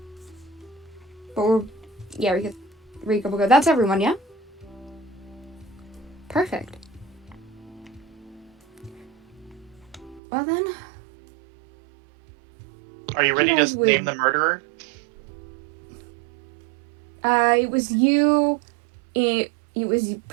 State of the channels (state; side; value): drops out; left; at 10.2 s